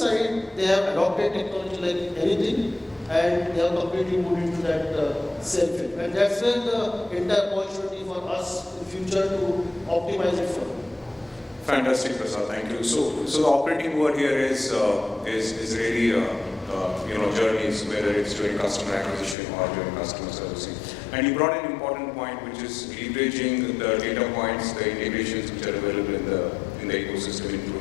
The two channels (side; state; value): right; drops out; at 19.4 s